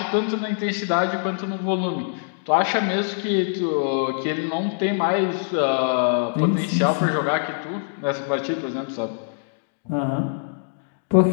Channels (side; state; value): right; silent; digital silence